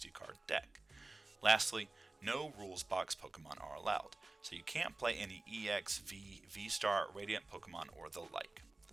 deck. Lastly, no rules box Pokemon are allowed, so you can't play any EX, V, V-Star, Radiant Pokemon, or the like.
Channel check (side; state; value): left; quieter; 3.1 dB